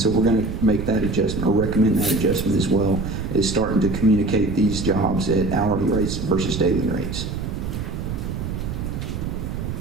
we're going to make that adjustment, or recommend that adjustment as well, is starting to communicate these jobs at hourly rates versus daily rates.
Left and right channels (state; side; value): noise; right; rumble, 5 dB below the sound